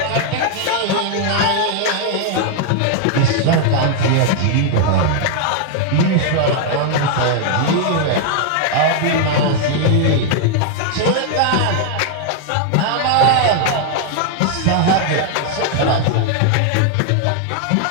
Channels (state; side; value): different; both; correlation 0.00